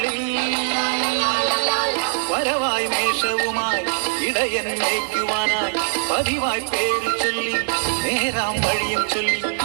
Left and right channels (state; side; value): silent; left; digital silence